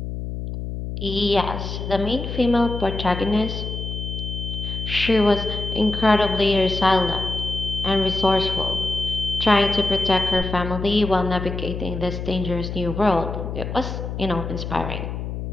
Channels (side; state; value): left; noise; hum, 5 dB below the sound